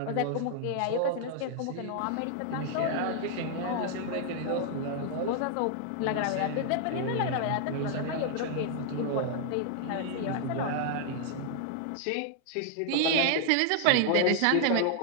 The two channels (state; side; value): different; both; correlation 0.00